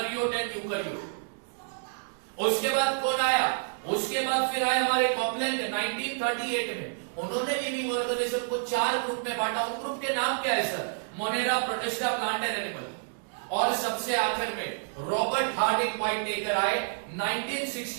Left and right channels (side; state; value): left; silent; digital silence